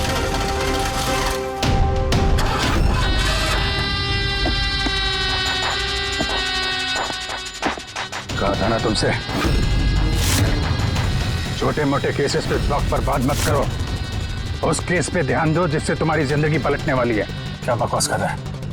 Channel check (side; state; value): both; identical; correlation 1.00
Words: कहा था ना तुमसे, छोटे मोटे केसेस पे वक्त पर बात मत करो। उस केस पे ध्यान दो जिससे तुम्हारी जिंदगी पलटने वाली है। क्या बकवास कर रहा है?